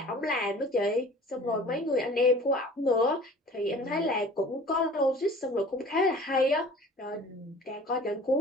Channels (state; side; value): normal; both; correlation 0.45